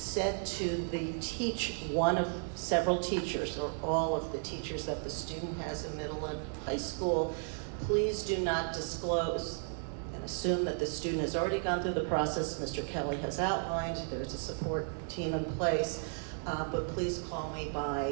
to one of several teachers, or all of the teachers that the student has in middle and high school, please do not disclose and assume that the student has already gone through the process Mr. Kelley has outlined. There's a support team in place. But please call me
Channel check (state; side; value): silent; left; 55 dB below the other